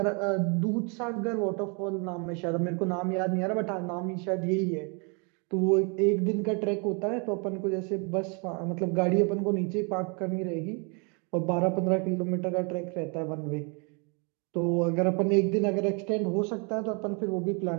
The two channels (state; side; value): quieter; left; 34.4 dB